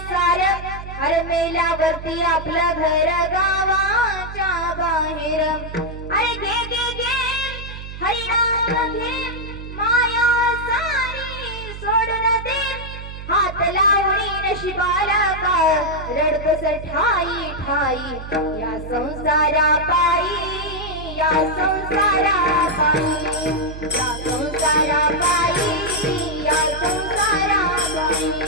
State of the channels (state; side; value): noise; right; hum, 11 dB below the sound